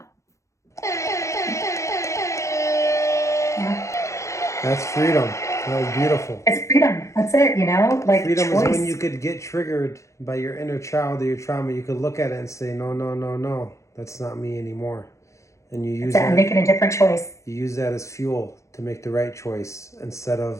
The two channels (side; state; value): right; late; 0.15 ms